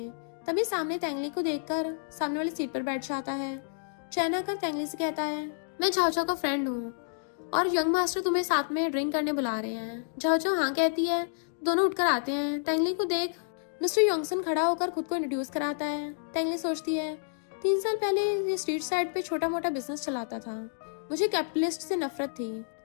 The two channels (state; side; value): silent; right; digital silence